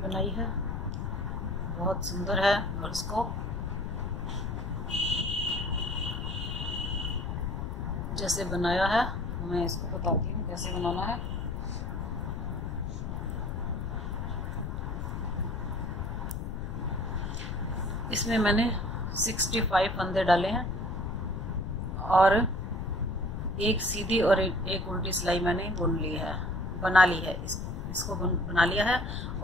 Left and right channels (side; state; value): left; noise; rumble, 4 dB below the sound